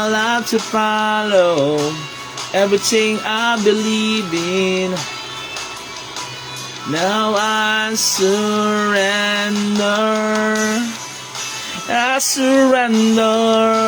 life to follow everything I believe in. Now I surrender. I surrender,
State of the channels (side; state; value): both; identical; correlation 1.00